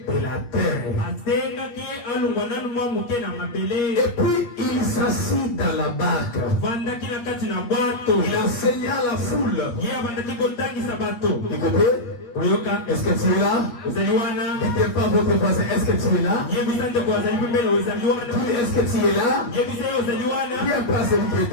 de la terre. Et puis il s'assit dans la barque. Il enseigna à la foule. Écoutez, est-ce que tu es là? Dites pas votre voisin, est-ce que tu es là? Est-ce que tu es là? Viens pas celui qui est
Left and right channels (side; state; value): right; late; 8.4 ms